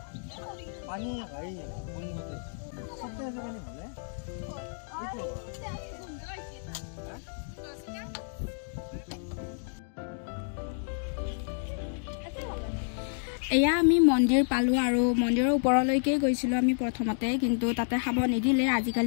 पानी भाई सबसे ऐसा पानी भले এয়া আমি মন্দিৰ পালো আৰু মন্দিৰৰ ওপৰলৈকে গৈছিলো আমি প্ৰথমতে কিন্তু তাতে খাব নিদিলে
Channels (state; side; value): silent; right; digital silence